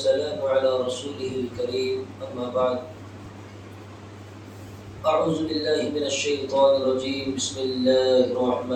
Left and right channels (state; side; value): identical; both; correlation 1.00